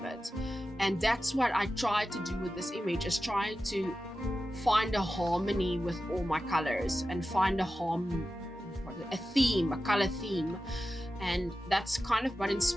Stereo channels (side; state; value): both; normal; correlation 0.93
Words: it. And that's what I tried to do with this image, is trying to find a harmony with all my colors and find a theme, a color theme. And that's kind of what